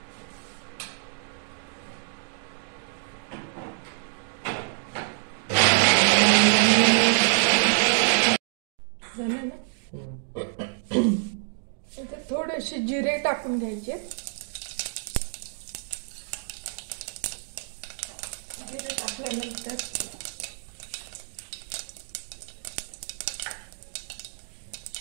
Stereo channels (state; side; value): silent; left; 60 dB below the other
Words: झालं ना. इथे थोडेसे जिरे टाकून घ्यायचे. जिरे टाकल्यानंतर